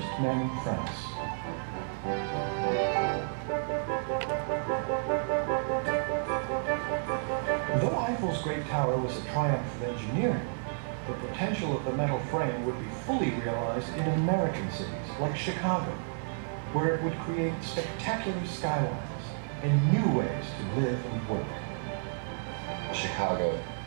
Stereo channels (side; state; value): left; silent; 57 dB below the other